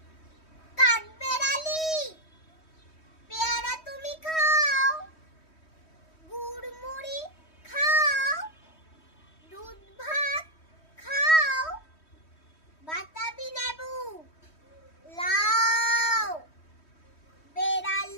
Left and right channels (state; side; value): late; right; 3.1 ms